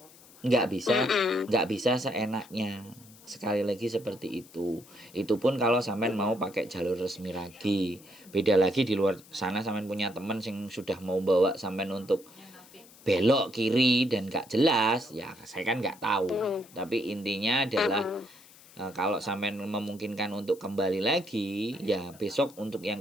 Nggak bisa seenaknya. Sekali lagi seperti itu. Itu pun kalau sampean mau pakai jalur resmi lagi. Beda lagi di luar sana sampean punya teman yang sudah mau bawa sampean untuk belok kiri dan gak jelas, ya saya kan nggak tahu. Tapi intinya adalah kalau sampai memungkinkan untuk kembali lagi, ya besok untuk yang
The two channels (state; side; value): noise; left; hiss, 23 dB below the sound